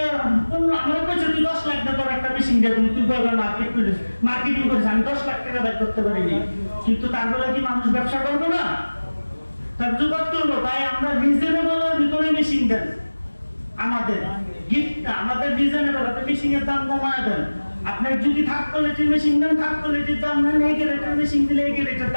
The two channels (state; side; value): inverted; both; correlation -1.00